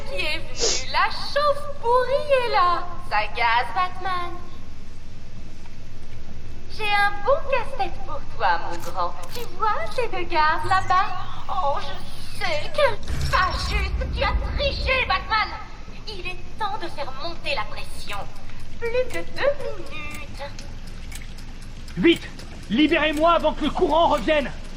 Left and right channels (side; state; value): both; identical; correlation 1.00